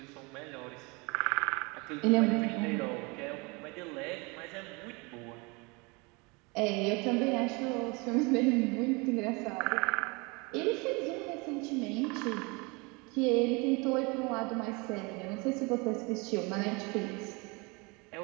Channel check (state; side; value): quieter; left; 28.1 dB